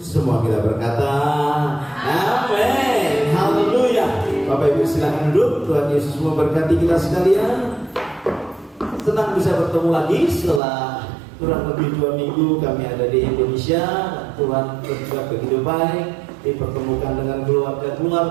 Semua kita berkata amin. Haleluya. Bapak Ibu silakan duduk. Tuhan Yesus memberkati kita sekalian. Senang bisa bertemu lagi setelah kurang lebih 2 minggu kami ada di Indonesia. Tuhan berbuat begitu baik, dipertemukan dengan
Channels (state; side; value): drops out; left; at 10.6 s